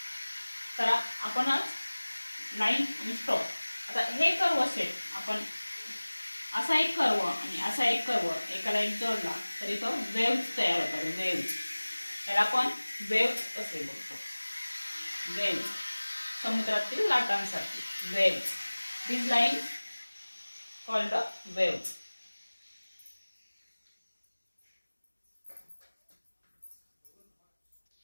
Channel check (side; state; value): both; inverted; correlation -1.00